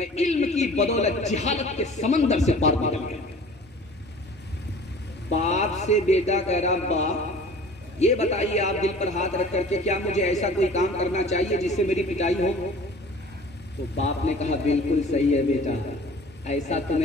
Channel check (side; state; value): both; normal; correlation 0.45